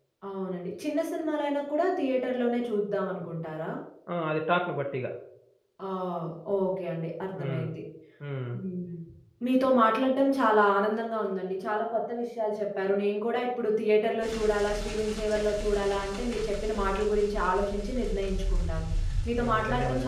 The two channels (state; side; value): identical; both; correlation 1.00